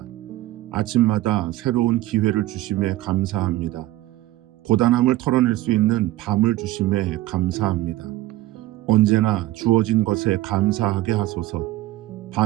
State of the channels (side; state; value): left; quieter; 16.4 dB